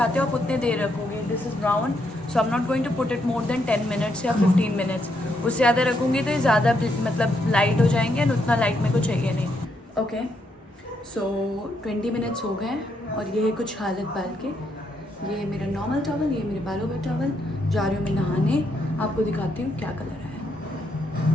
हो आप उतने देर रखोगे। This is brown, so I am not going to put it more than 10 minutes या 15 मिनट्स। उससे ज़्यादा रखूँगी तो ये ज़्यादा मतलब लाइट हो जाएंगे, एंड उतना लाइट मेरे को चाहिए नहीं। ओके, सो 20 मिनट्स हो गए और ये है कुछ हालत बाल के। ये मेरा नॉर्मल टॉवल, ये मेरे बालों का टॉवल। जा रही हूँ मैं नहाने, आपको दिखाती हूँ क्या कलर है।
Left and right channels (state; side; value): normal; both; correlation 0.77